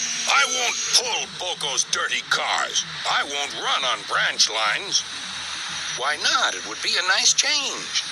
"I won't pull Boko's dirty cars. I won't run on branch lines." "Why not? It would be a nice change."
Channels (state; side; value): identical; both; correlation 1.00